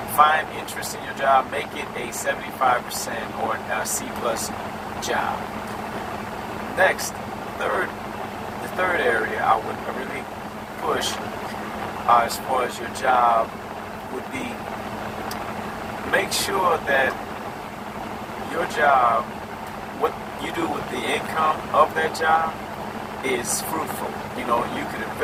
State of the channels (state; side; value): identical; both; correlation 1.00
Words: Find interest in your job, make it a 75% or a C plus job. Next, the third area I would really push as far as your job would be, make sure that your job, what you do with the income of that job is fruitful. You could